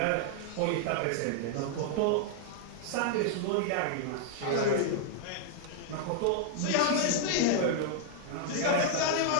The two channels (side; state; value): both; different; correlation -0.01